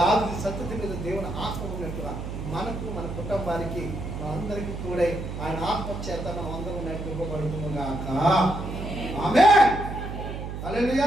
సంతతి మీద దేవుని ఆత్మ ఉన్నట్టుగా మనకు, మన కుటుంబానికి, మనందరికీ తోడై ఆయన ఆత్మ చేత మనం అందరం నడిపింపబడుతున్నాం గాక. ఆమేన్.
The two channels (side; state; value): right; noise; hum, 7 dB below the sound